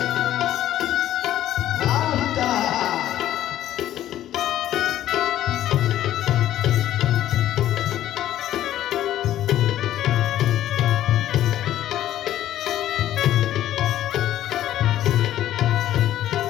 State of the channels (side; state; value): right; quieter; 12.7 dB